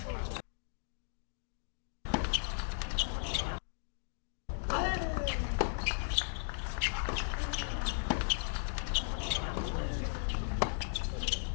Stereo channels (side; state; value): right; silent; digital silence